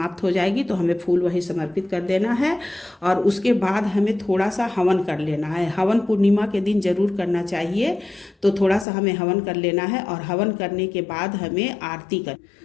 हो जाएगी तो हमें फूल वही समर्पित कर देना है। और उसके बाद हमें थोड़ा सा हवन कर लेना है। हवन पूर्णिमा के दिन जरूर करना चाहिए। तो थोड़ा सा हमें हवन कर लेना है। और हवन करने के बाद हमें आरती कर,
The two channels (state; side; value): drops out; right; at 8.8 s